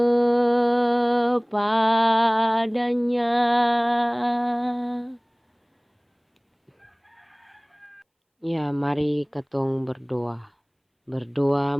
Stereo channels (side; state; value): both; identical; correlation 1.00